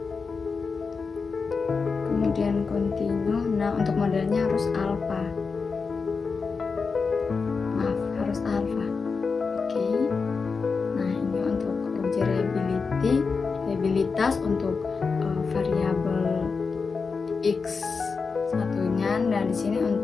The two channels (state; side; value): quieter; right; 4.9 dB